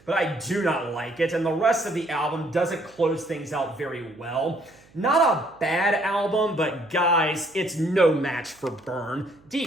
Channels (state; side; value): noise; right; hum, 29 dB below the sound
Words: but I do not like it. And the rest of the album doesn't close things out very well. Not a bad album, but guys, it's no match for Burn.